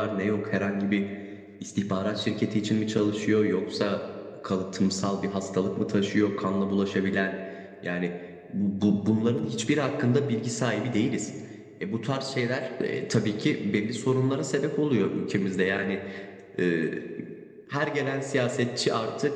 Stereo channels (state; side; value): identical; both; correlation 1.00